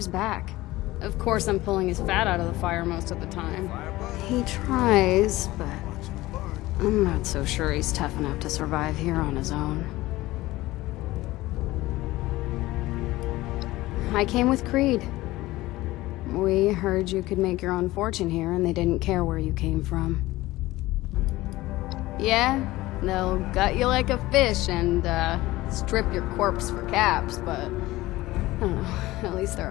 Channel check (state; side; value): quieter; right; 18.1 dB